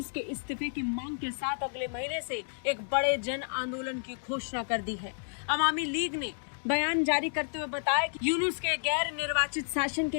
के इस्तीफे की मांग के साथ अगले महीने से एक बड़े जन आंदोलन की घोषणा कर दी है। अवामी लीग ने बयान जारी करते हुए बताया कि यूनुस के गैर निर्वाचित शासन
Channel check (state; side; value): silent; right; digital silence